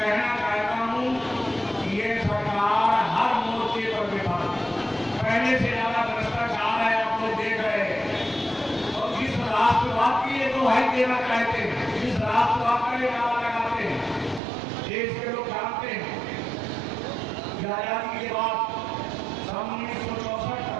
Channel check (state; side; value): drops out; left; at 14.4 s